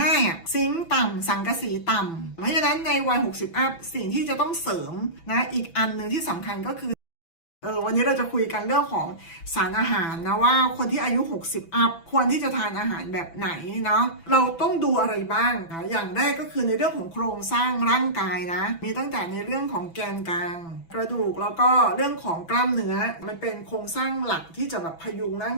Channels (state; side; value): late; right; 6.0 ms